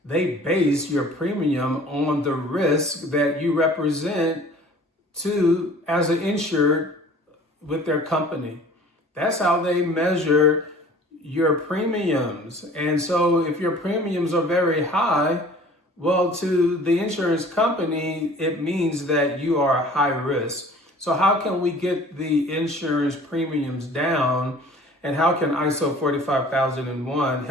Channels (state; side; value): normal; both; correlation 0.48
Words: they base your premium on the risk that you represent as an insured with their company. That's how they measure your premiums. And so if your premiums are very high, well, to the insurance company, it means that you are high risk. So how can we get the insurance premiums down, and how can ISO 45001